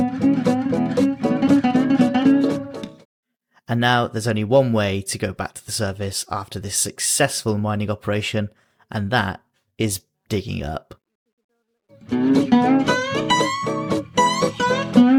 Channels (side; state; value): both; identical; correlation 1.00